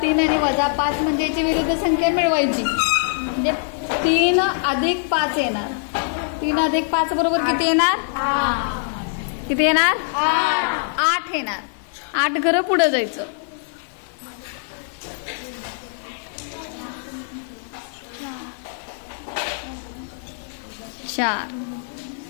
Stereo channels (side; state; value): right; silent; 64 dB below the other